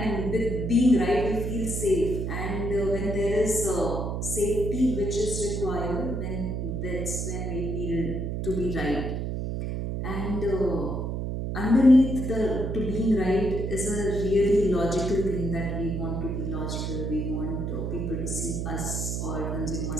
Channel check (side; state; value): right; noise; hum, 2 dB below the sound